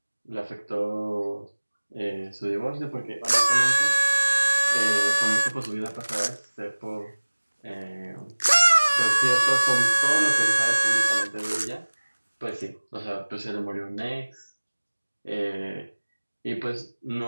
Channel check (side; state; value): both; inverted; correlation -1.00